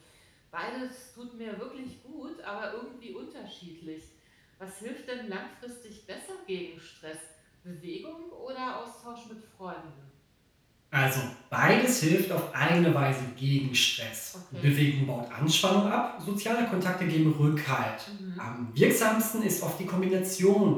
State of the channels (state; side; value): identical; both; correlation 1.00